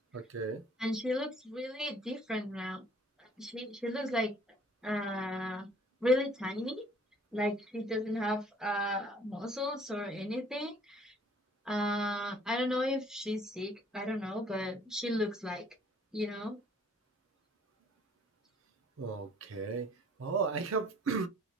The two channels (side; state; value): both; normal; correlation 0.57